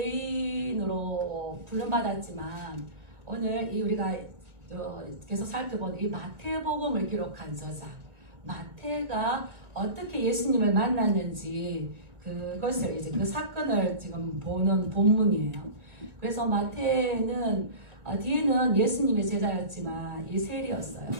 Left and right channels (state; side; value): late; left; 1.6 ms